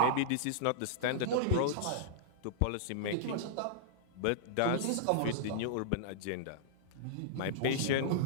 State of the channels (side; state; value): both; different; correlation -0.02